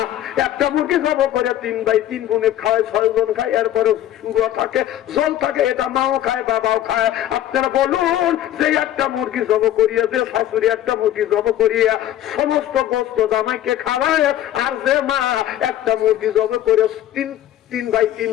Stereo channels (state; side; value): quieter; right; 12.4 dB